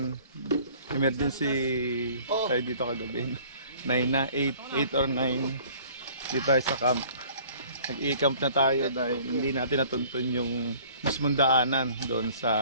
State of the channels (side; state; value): both; inverted; correlation -0.52